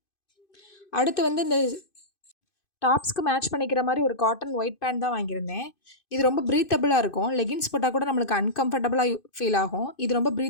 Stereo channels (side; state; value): right; late; 2.5 ms